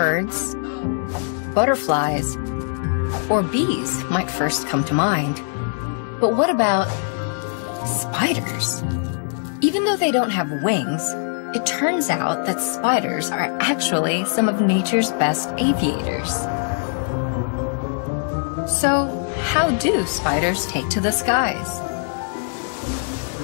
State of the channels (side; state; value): right; silent; digital silence